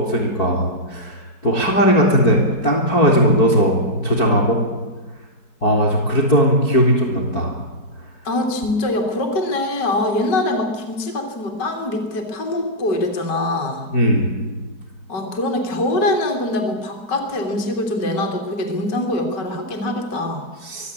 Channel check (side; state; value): right; late; 4.7 ms